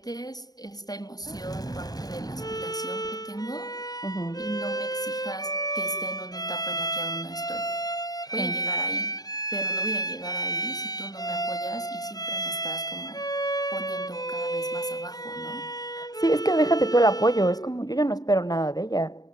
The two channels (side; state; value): right; late; 0.19 ms